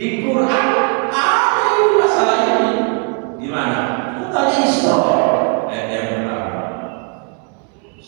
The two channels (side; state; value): left; quieter; 38.0 dB